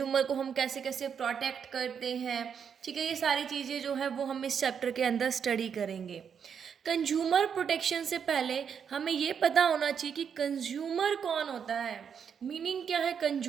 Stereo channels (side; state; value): left; quieter; 7.3 dB